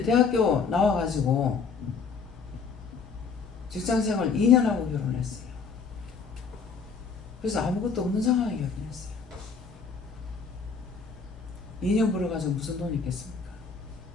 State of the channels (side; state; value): right; quieter; 5.4 dB